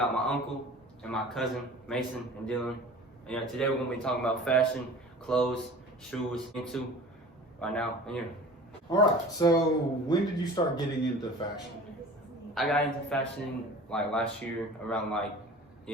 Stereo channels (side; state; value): both; normal; correlation 0.41